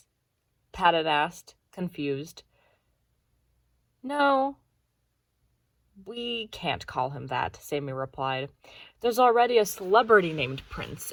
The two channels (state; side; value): identical; both; correlation 1.00